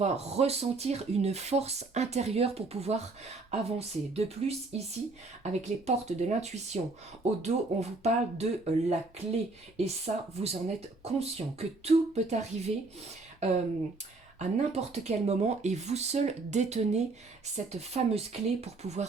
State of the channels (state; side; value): quieter; left; 3.5 dB